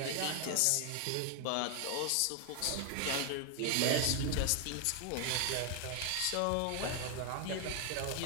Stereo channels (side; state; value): both; different; correlation 0.00